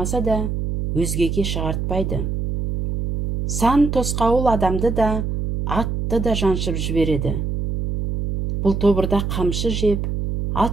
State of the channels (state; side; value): noise; right; hum, 2 dB below the sound